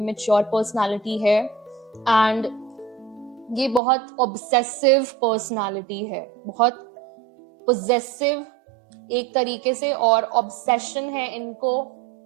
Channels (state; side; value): drops out; left; at 3.8 s